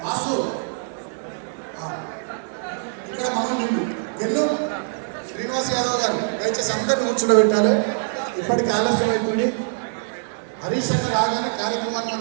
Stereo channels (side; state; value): left; silent; 63 dB below the other